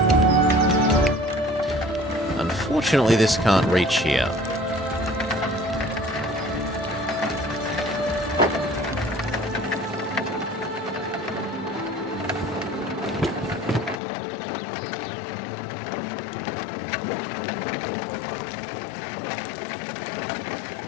Unfortunately, this can't reach here.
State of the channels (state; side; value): drops out; right; at 14.0 s